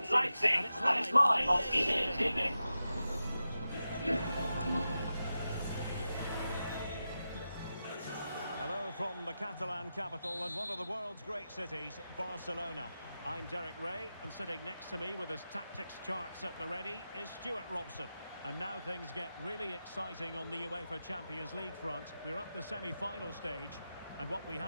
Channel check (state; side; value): inverted; both; correlation -0.91